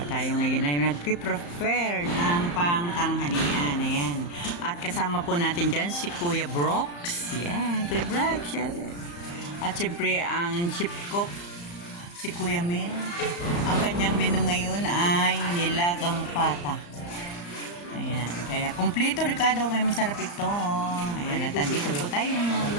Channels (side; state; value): right; late; 35 ms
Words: tayo ngayon ay nagpe-prepare ng pangtanghalian. Ayan. At kasama po natin dyan si Kuya Brooks. Yan, Kuya Brooks. Yan. At siyempre ang chief cook si Kuya Mil. Ang kanyang menu ngayon ay nilagang pata. Ayan. Kaya kumpleto Ricardo, kaya masarap ito. Ayan. At andito po tayo